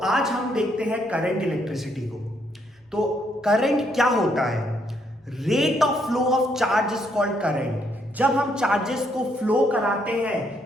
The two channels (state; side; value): normal; both; correlation 0.73